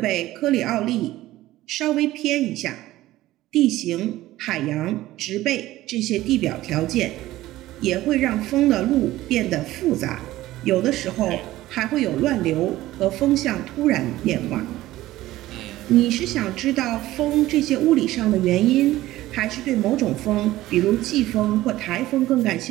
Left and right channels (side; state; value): left; quieter; 16.0 dB